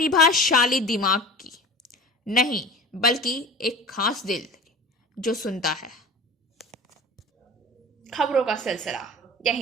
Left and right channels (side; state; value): both; normal; correlation 0.37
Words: दिमाग की, नहीं बल्कि एक खास दिल जो सुनता है। खबरों का सिलसिला